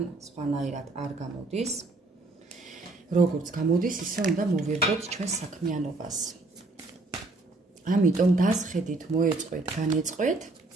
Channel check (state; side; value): quieter; left; 3.2 dB